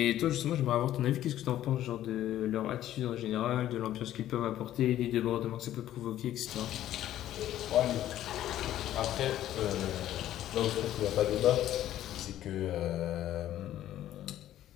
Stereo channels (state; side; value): quieter; right; 12.7 dB